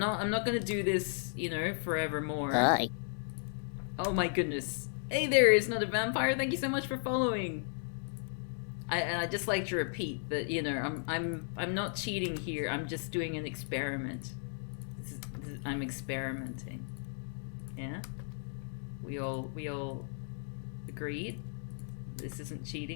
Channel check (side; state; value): right; silent; digital silence